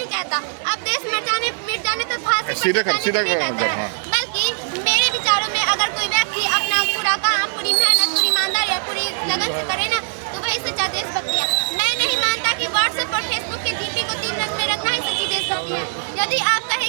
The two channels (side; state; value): left; silent; 64 dB below the other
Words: कहता, अब देश मर जाने मिट जाने तो फांसी पर चढ़ जाने को नहीं कहता है। बल्कि मेरे विचारों में अगर कोई व्यक्ति अपना पूरा काम, पूरी मेहनत, पूरी ईमानदारी और पूरी लगन से करे ना, तो वही सच्चा देशभक्ति है। मैं नहीं मानता कि व्हाट्सएप और फेसबुक के डीपी को 3 रंग में रखना ही सच्ची देशभक्ति है। यदि आप